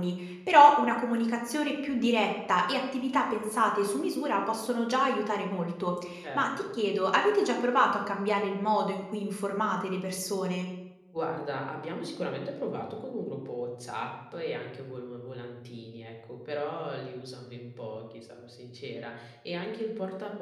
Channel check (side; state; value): both; identical; correlation 1.00